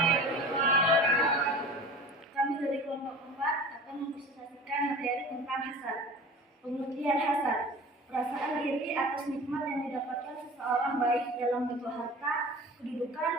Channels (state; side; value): normal; both; correlation 0.39